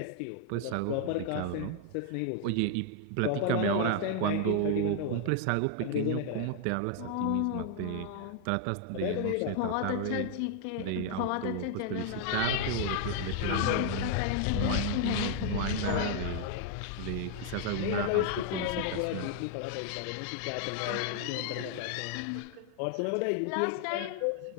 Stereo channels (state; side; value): different; both; correlation 0.00